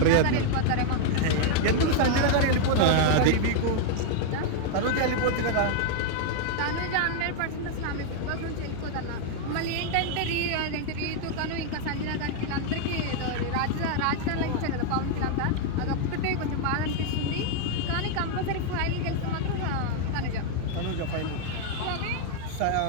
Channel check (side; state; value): both; different; correlation 0.00